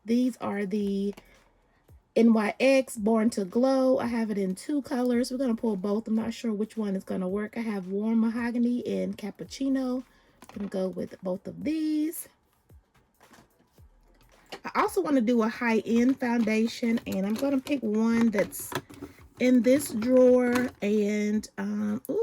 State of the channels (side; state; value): both; identical; correlation 1.00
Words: these are the NYX Born to Glow. I have it in 2 colors. We're going to pull both. I'm not sure which one is going to work. I have Warm Mahogany and Cappuccino. I'm going to go with both of these. I also want to do a high-end foundation, and I'm going to pick one that's in this drawer. And